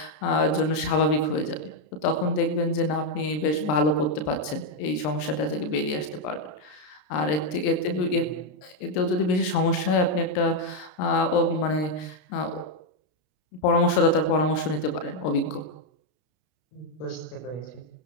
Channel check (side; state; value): right; late; 33 ms